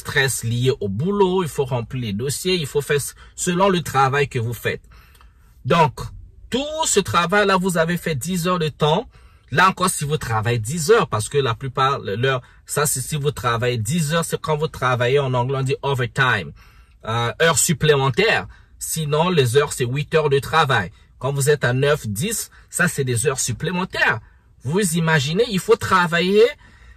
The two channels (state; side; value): identical; both; correlation 1.00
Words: lié au boulot. Il faut remplir les dossiers. Il faut faire selon le travail que vous faites. Donc, tout ce travail-là, vous avez fait 10 heures de temps. Là encore, si vous travaillez 10 heures, parce que la plupart, ça c'est si vous travaillez 10 heures, c'est quand vous travaillez, en anglais on dit overtime. Heures supplémentaires. Sinon, les heures, c'est 8 heures de travail. Quand vous êtes à 9, 10, ça c'est des heures supplémentaires. Vous imaginez, il faut travailler